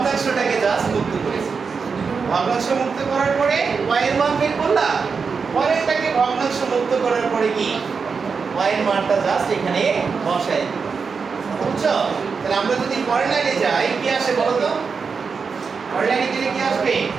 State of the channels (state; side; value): quieter; left; 5.3 dB